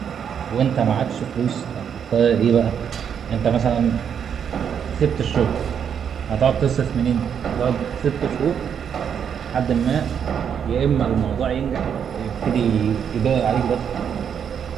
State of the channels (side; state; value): left; quieter; 7.9 dB